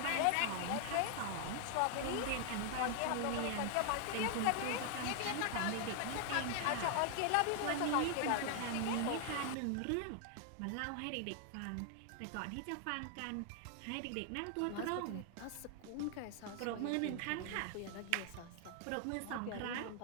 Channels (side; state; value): both; different; correlation 0.00